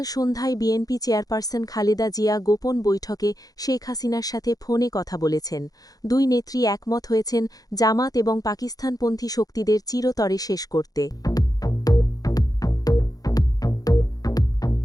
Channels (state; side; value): late; right; 0.18 ms